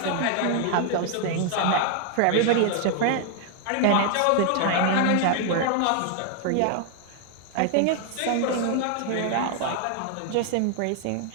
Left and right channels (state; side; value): different; both; correlation 0.00